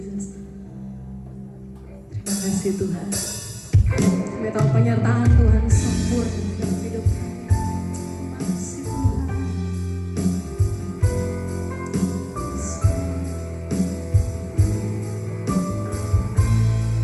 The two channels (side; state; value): both; identical; correlation 1.00